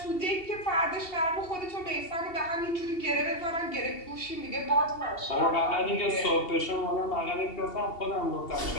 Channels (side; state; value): right; late; 2.7 ms